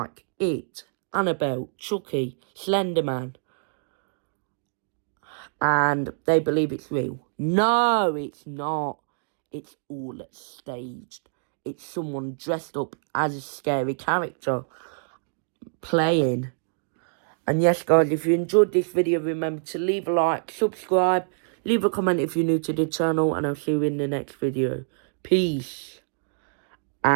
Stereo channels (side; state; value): left; silent; digital silence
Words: It, Annabelle, Chucky, Slenderman. And they believe it's real. No, it's not. It's all staged. It's someone dressed up as a scary character playing. And yes, guys, if you enjoyed this video, remember to leave a like, subscribe, leave a comment if you're new to the channel, and I'll see you in the next video. Peace